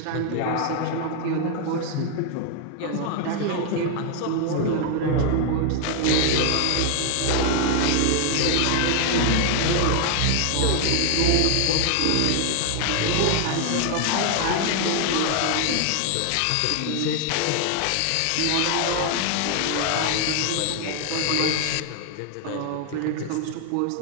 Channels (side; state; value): both; different; correlation 0.00